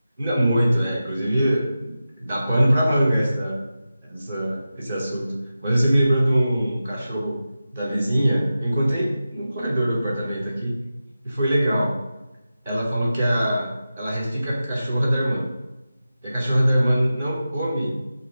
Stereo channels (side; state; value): both; inverted; correlation -0.93